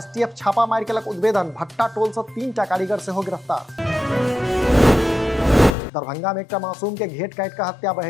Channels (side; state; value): right; drops out; at 5.8 s